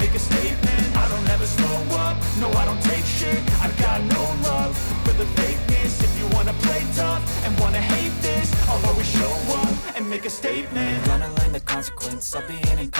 make a statement. I don't ever slow up, no I don't take shit. I got no love for the fakeness. If you wanna play tough and wanna hate this, I'll always show up and make a statement. Gonna learn the consequence of being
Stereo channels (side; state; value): both; inverted; correlation -1.00